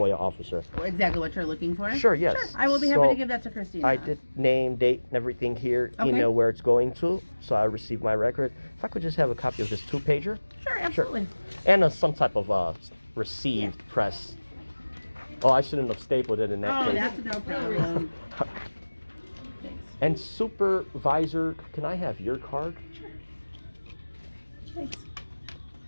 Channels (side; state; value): both; inverted; correlation -1.00